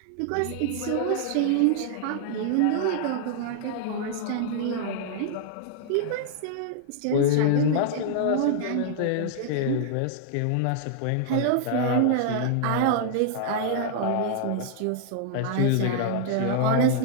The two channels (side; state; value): both; different; correlation -0.01